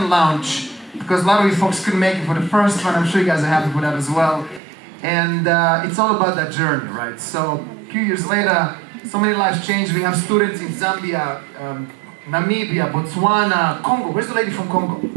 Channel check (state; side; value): drops out; left; at 4.6 s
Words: launch because a lot of you folks couldn't make it for the first one. I'm sure you guys are happy with that as well. And it's all about that journey, right? So a few years later, so many lives changed. We have students in Zambia, Namibia, Botswana, Congo. Where's the lady from Congo?